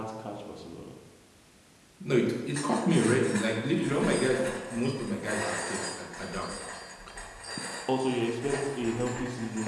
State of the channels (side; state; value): both; identical; correlation 1.00